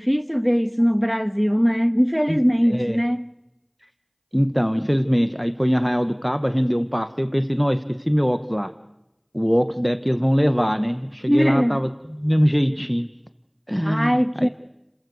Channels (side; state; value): both; identical; correlation 1.00